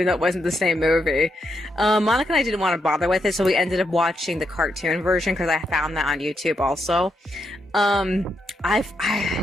though it wasn't the same movie. Monica and I didn't want to bother with it, so we ended up watching the cartoon version because I found that on YouTube also.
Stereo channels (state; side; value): normal; both; correlation 0.80